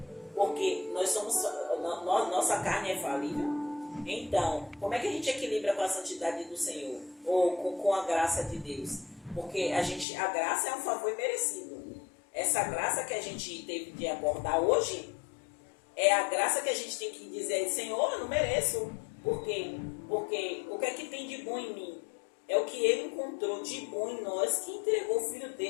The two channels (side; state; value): right; drops out; at 10.1 s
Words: porque nossa carne é falível. Então, como é que a gente equilibra com a santidade do Senhor? Ou com a graça de Deus? Porque a graça é um favor imerecido. Essa graça que a gente teve de abordar hoje é a graça que a gente tem que dizer: Senhor, eu não mereço. Por quê? Porque o que é que tem de bom em mim? É o que Ele encontrou de bom em nós, que entregou o Filho